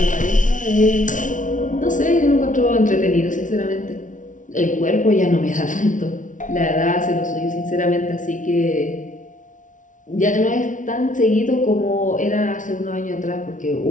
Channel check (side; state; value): right; late; 0.37 ms